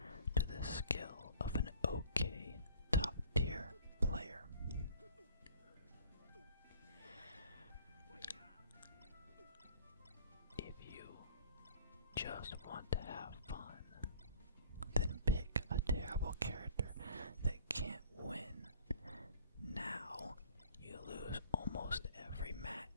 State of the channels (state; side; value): inverted; both; correlation -0.49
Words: to the skill of an okay top tier player. If you just want to have fun, then pick a terrible character that can't win. Now you lose almost every